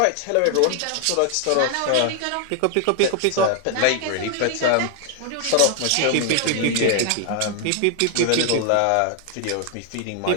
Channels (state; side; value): different; both; correlation 0.00